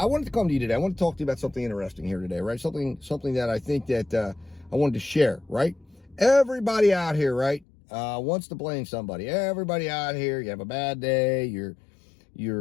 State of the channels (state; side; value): drops out; right; at 7.7 s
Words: wanted to come to you today. I want to talk to you about something interesting here today, right? Something that I think that I wanted to share, right? Everybody out here, right, wants to blame somebody. Everybody out here, you have a bad day, you're